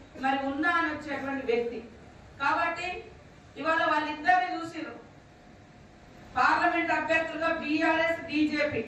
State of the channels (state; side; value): identical; both; correlation 1.00